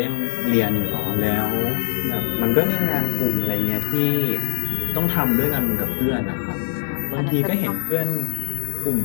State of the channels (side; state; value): right; silent; 65 dB below the other